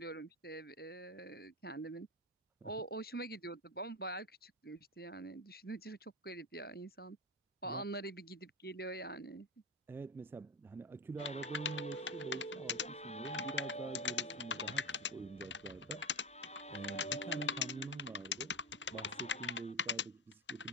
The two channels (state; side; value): normal; both; correlation 0.16